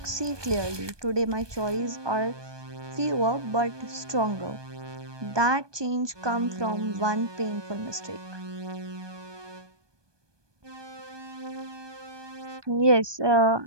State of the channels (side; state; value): left; late; 1.2 ms